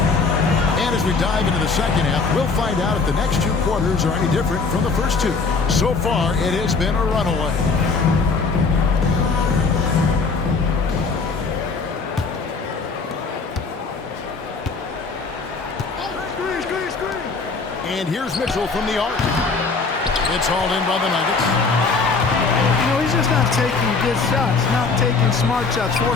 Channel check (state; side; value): quieter; right; 4.4 dB